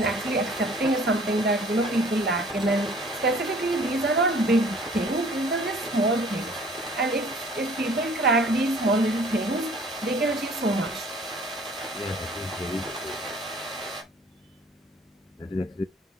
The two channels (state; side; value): normal; both; correlation 0.53